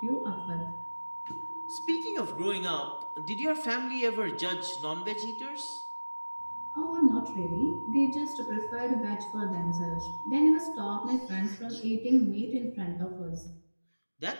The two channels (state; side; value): inverted; both; correlation -1.00